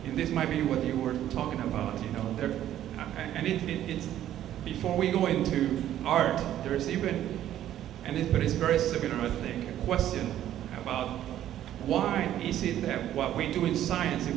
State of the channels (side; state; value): left; quieter; 11.9 dB